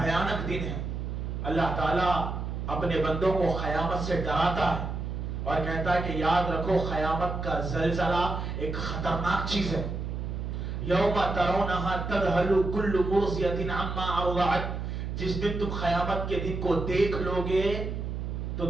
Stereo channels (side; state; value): right; noise; hum, 4 dB below the sound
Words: دن ہے۔ اللہ تعالیٰ اپنے بندوں کو قیامت سے ڈراتا ہے اور کہتا ہے کہ یاد رکھو قیامت کا زلزلہ ایک خطرناک چیز ہے۔ یوم ترونہا تذہل کل مرضیۃ عما ارضعت، جس دن تم قیامت کے دن کو دیکھ لو گے تو